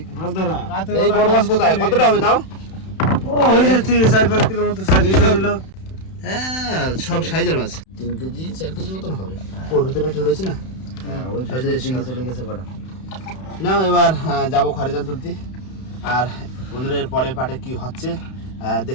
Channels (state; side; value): late; right; 31 ms